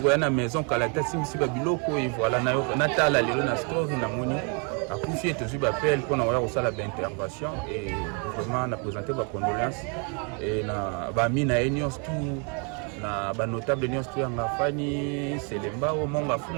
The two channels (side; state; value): left; quieter; 36.5 dB